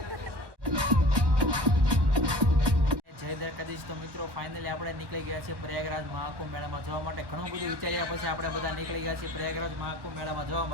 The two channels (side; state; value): left; late; 1.1 ms